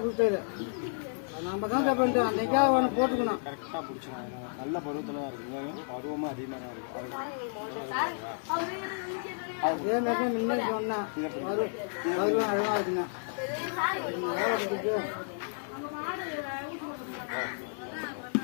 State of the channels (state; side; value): silent; right; digital silence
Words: கொடுத்தாரு. நம்ம தான் பண்ணிட்டோம். அன்றைக்காக ஒன்று போட்டுக்கணும். கரெக்டாக பிடிச்சிடும். நல்ல பருவத்தில் தான் இருக்குங்க. பருவமாக அதிகமாக தான் இருக்குது. அதே மாதிரி தான் முன்னாடி சொன்னேன். பருவம் அதெல்லாம் இருக்குங்க.